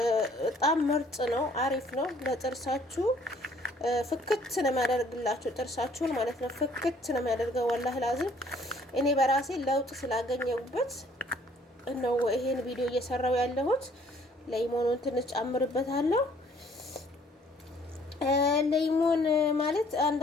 በጣም ምርጥ ነው፣ አሪፍ ነው ለጥርሳችሁ። ፍክት ነው የሚያደርግላችሁ ጥርሳችሁን ማለት ነው። ፍክት ነው የሚያደርገው። ወላሂ ላዝም እኔ በራሴ ለውጥ ስላገኘሁበት ነው ይሄን ቪዲዮ እየሰራው ያለሁት። ሌሞኑን ትንሽ ጨምርበታለሁ። ሌሞን ማለት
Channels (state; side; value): normal; both; correlation 0.59